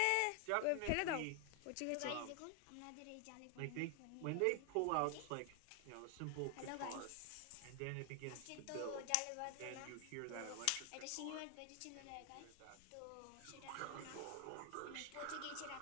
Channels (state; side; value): different; both; correlation 0.00